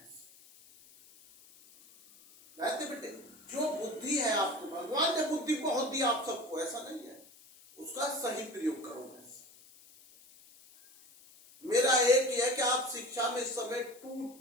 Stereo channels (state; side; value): noise; left; hiss, 24 dB below the sound